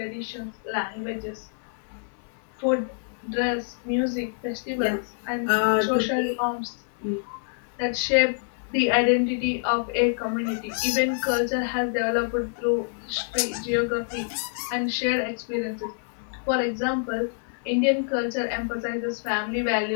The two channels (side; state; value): right; silent; 60 dB below the other